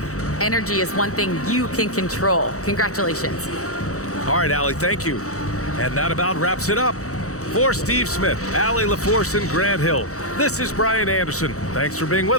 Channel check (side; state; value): right; late; 0.65 ms